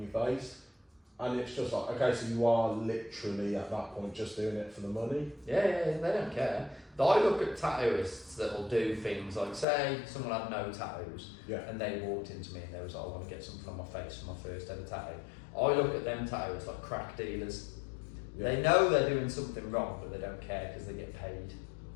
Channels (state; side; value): drops out; right; at 9.7 s